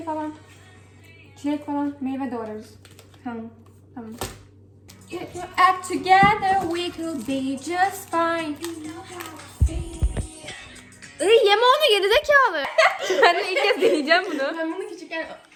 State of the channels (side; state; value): both; identical; correlation 1.00